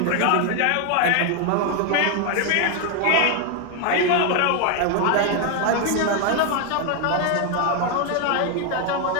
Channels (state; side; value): different; both; correlation 0.01